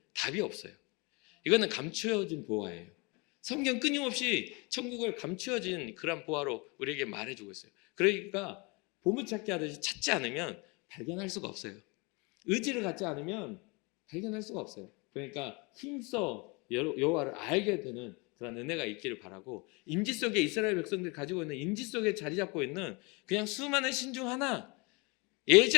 답이 없어요. 이거는 감추어진 보화예요. 성경 끊임없이 천국을 감추어진 그런 보화로 우리에게 말해주고 있어요. 그러니까 보물찾기 하듯이 찾지 않으면 발견할 수가 없어요. 의지를 갖지 않으면 발견할 수가 없어요. 그러니까 힘써 여호와를 알게 되는 그런 은혜가 있기를 바라고, 임지 속에 이스라엘 백성들이 가지고 있는 임지 속에 자리 잡고 있는 그냥 수많은 신 중 하나,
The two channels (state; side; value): quieter; right; 28.6 dB